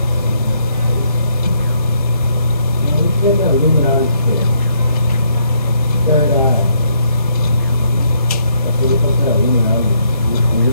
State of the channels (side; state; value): both; inverted; correlation -0.72